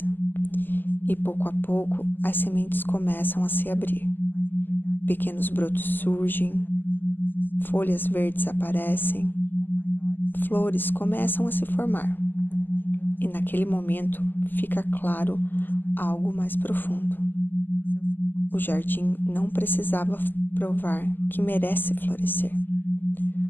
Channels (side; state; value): right; late; 0.090 ms